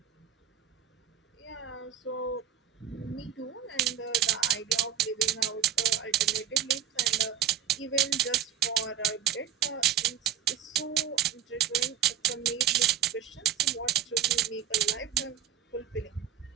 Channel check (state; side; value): quieter; left; 10.2 dB